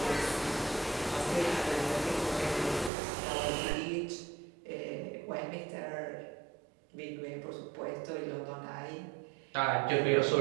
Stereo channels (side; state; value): left; drops out; at 2.9 s